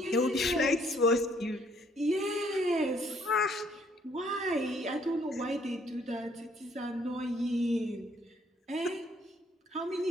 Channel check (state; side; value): normal; both; correlation 0.65